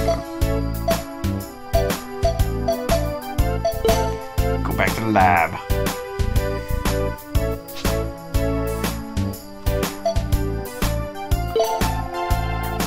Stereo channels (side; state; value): both; identical; correlation 1.00